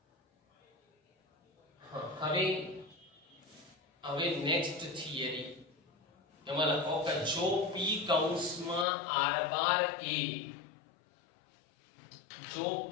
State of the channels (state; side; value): drops out; right; at 8.8 s